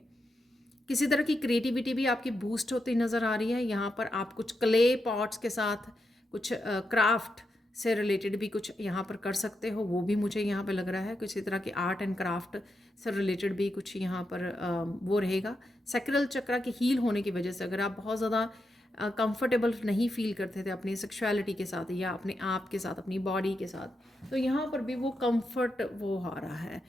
किसी तरह की क्रिएटिविटी भी आपकी बूस्ट होती नज़र आ रही है। यहाँ पर आप कुछ क्ले पॉट्स के साथ कुछ क्राफ्ट से रिलेटेड भी कुछ यहाँ पर कर सकते हो, वो भी मुझे यहाँ पे लग रहा है। किसी तरह की आर्ट एंड क्राफ्ट से रिलेटेड भी कुछ यहाँ पर वो रहेगा। सैक्रल चक्रा के हील होने की वजह से अगर आप बहुत ज़्यादा कंफर्टेबल नहीं फील करते थे अपनी सेक्सुअलिटी के साथ या अपने आप के साथ, अपनी बॉडी के साथ, तो यहाँ पर भी वो कंफर्ट वो आ रहा है,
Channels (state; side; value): normal; both; correlation 0.85